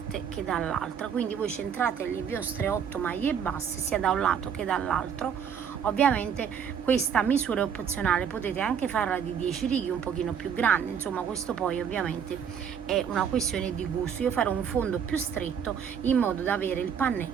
che dall'altra, quindi voi centrate le vostre 8 maglie basse sia da un lato che dall'altro. Ovviamente questa misura è opzionale, potete anche farla di 10 righe un pochino più grande, insomma questo poi ovviamente è una questione di gusto. Io farò un fondo più stretto in modo da avere il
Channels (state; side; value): quieter; left; 7.7 dB